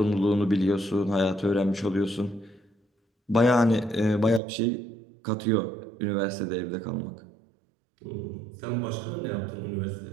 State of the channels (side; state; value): left; drops out; at 4.4 s